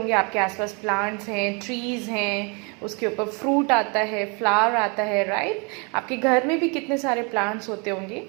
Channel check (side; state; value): left; quieter; 32.5 dB